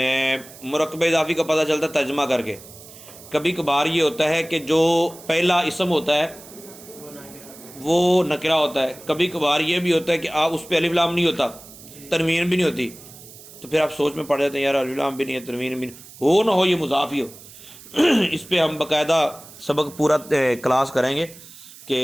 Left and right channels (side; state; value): right; noise; hiss, 19 dB below the sound